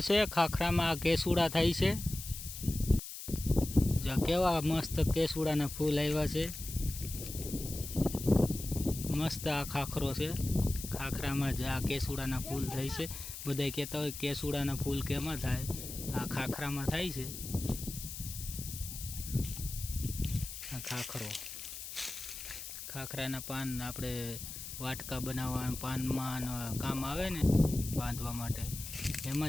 છે, ખાખરામાં કેસુડા થાય છે. જો કેવા મસ્ત કેસુડાના ફૂલ આવ્યા છે. મસ્ત આ ખાખરો છે. ખાખરામાં જ આ કેસુડાના ફૂલ થાય છે. બધા કહેતા હોય કેસુડાના ફૂલ કેમાં થાય, આ ખાખરામાં થાય છે. આ ખાખરો, ખાખરાના પાન આપણે વાટકા બનાવવા પાનમાં કામ આવે ને, બાંધવા માટે,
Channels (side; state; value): left; noise; hiss, 9 dB below the sound